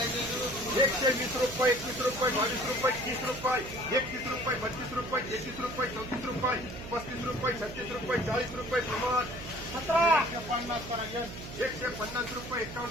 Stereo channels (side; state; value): right; noise; hum, 12 dB below the sound